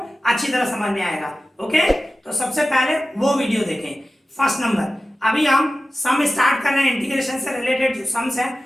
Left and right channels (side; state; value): both; normal; correlation 0.95